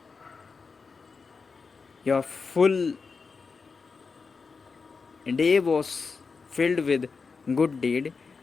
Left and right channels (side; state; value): right; quieter; 4.9 dB